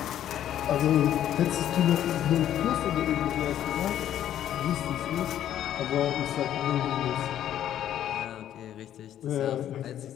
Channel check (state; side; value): quieter; right; 11.1 dB